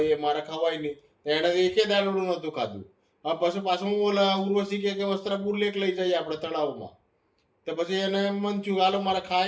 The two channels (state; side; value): identical; both; correlation 1.00